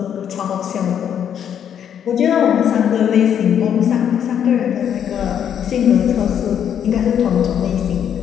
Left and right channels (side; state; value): right; quieter; 8.9 dB